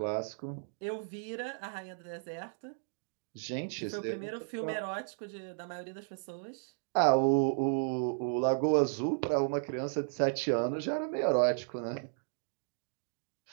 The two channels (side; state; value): left; silent; digital silence